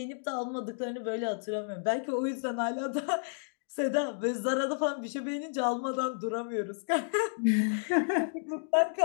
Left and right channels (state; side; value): silent; right; digital silence